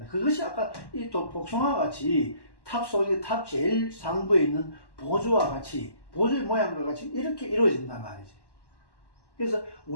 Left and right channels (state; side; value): late; right; 1.1 ms